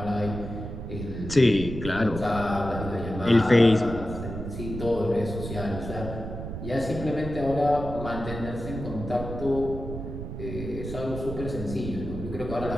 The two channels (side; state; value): right; noise; rumble, 8 dB below the sound